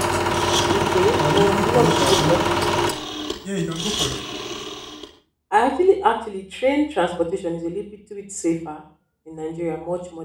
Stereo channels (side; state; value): both; identical; correlation 1.00